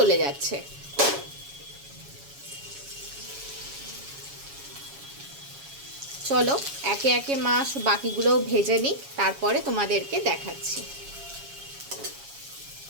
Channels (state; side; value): late; left; 7.2 ms